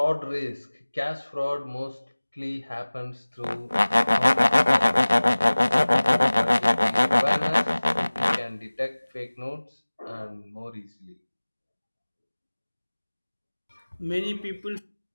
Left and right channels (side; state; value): both; inverted; correlation -1.00